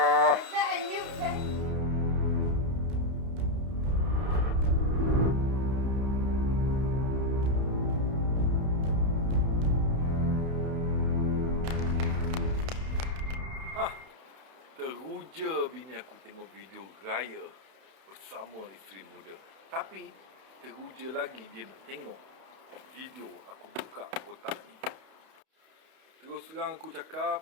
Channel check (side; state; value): left; late; 31 ms